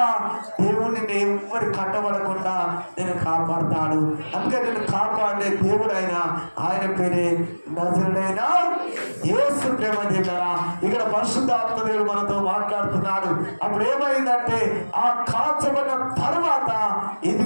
దేవుడిని ఎవరి కట్టబడకుండా నేను కాపాడుతాడు. అందుకే నేను కాపాడే దేవుడు ఆయన పేరే నజరుడైన యేసు. ప్రేమ దగ్గర ఇక్కడ పరిశుద్ధాత్మ దేవుడు మనతో మాట్లాడుతున్నాడు. అప్పుడు ఏమైందంటే ఆ కాల్చబడిన తర్వాత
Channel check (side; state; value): both; inverted; correlation -1.00